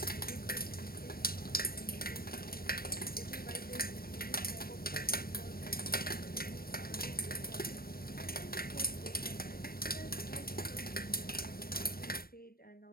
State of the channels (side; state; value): right; late; 0.44 ms